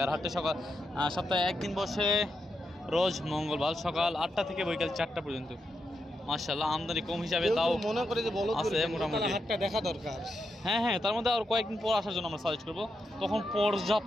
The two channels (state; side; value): normal; both; correlation 0.85